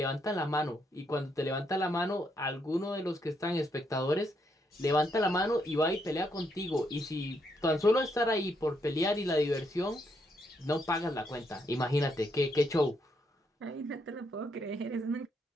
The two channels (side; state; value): both; normal; correlation 0.76